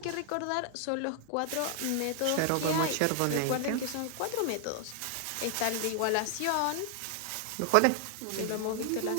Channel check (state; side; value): different; both; correlation 0.00